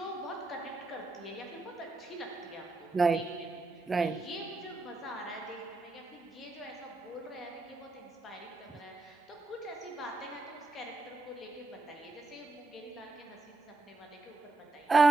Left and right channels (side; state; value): left; quieter; 3.3 dB